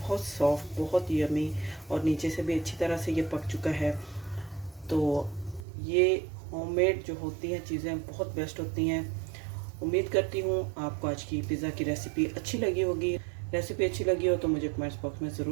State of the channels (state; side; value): drops out; left; at 5.7 s